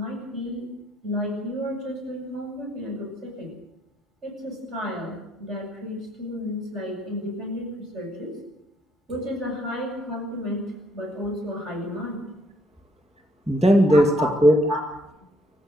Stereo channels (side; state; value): both; normal; correlation 0.69